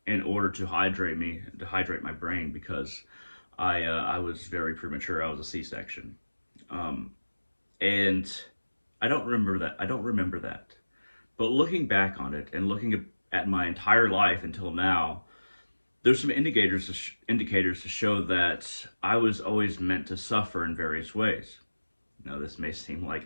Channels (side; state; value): both; inverted; correlation -1.00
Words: in order to hydrate my brain because I was very premature. I was a C-section. Um, and I don't remember that. I don't remember that. But looking back on it and looking at my entire life until now, there's some indicators to show that I was always meant to suffer in various ways. Now, this may seem like